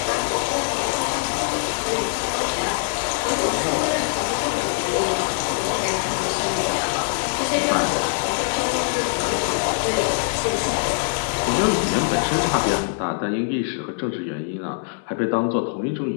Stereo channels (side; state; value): right; silent; digital silence